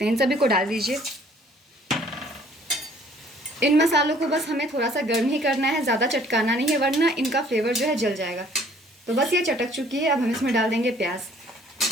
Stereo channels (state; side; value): normal; both; correlation 0.58